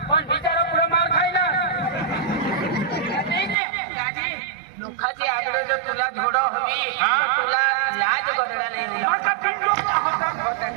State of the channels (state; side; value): drops out; left; at 3.6 s